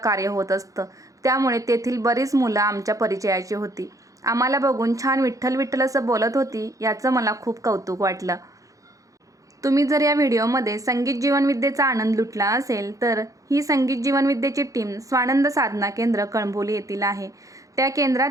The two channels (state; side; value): late; left; 0.16 ms